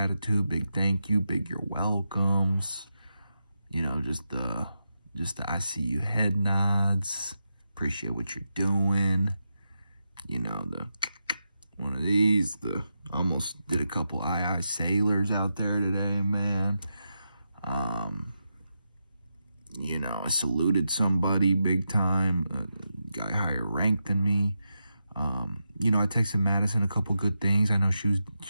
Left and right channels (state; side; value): inverted; both; correlation -0.87